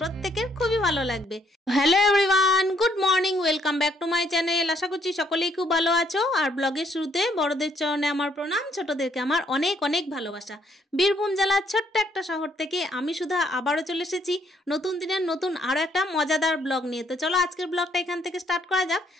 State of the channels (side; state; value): both; normal; correlation 0.69